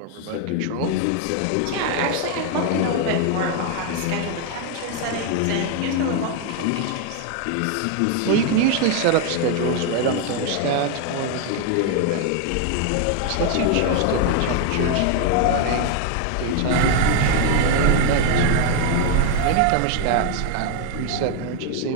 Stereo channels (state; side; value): different; both; correlation 0.01